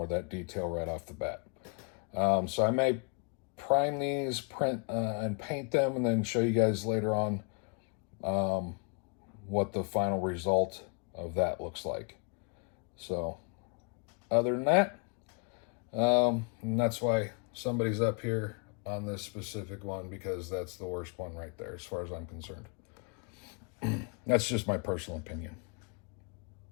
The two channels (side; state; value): right; quieter; 39.2 dB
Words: of that detail right off the bat. So I may prime these, print and paint them, and then show you guys later on what the final result of that looks like. So other than that, and that's why somebody's up here on this specific one, because that's the worst one right there as far as I'm concerned. That's just my personal opinion,